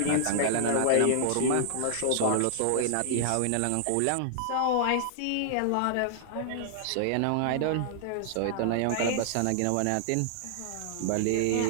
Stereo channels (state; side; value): different; both; correlation -0.01